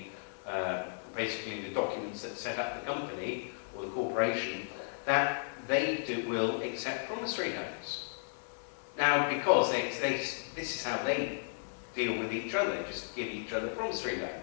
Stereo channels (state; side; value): silent; right; digital silence